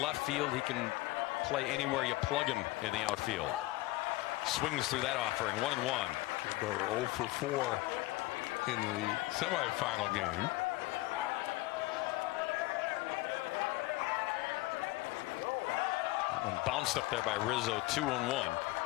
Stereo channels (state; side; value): quieter; right; 19.6 dB